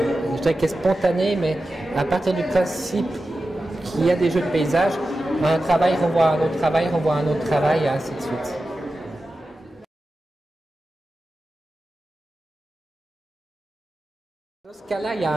je dirais qu'elle est spontanée, mais à partir du principe qu'il y a des jeux de paysage, un travail renvoie à un autre travail, renvoie à un autre travail, et ainsi de suite. Dans ce cas-là, il y a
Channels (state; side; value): normal; both; correlation 0.93